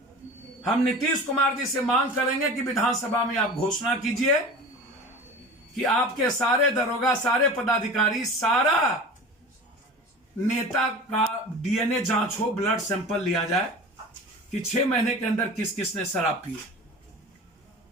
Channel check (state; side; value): normal; both; correlation 0.36